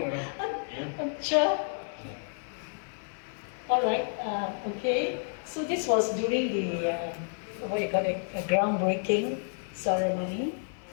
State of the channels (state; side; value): silent; right; 58 dB below the other